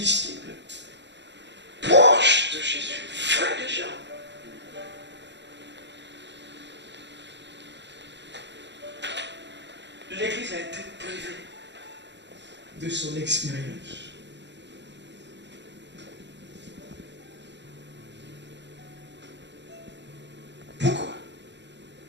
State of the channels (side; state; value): left; late; 0.52 ms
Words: proches de Jésus, frère de Jean. L'Église a été privée de son expérience. Pourquoi?